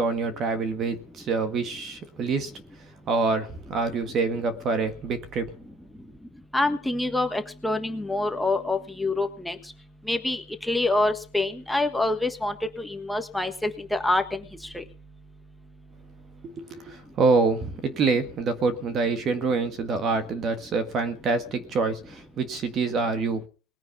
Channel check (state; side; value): normal; both; correlation 0.64